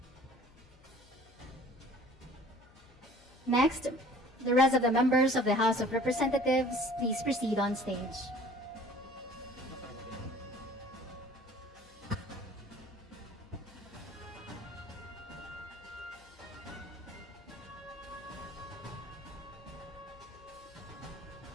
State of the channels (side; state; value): left; noise; hum, 25 dB below the sound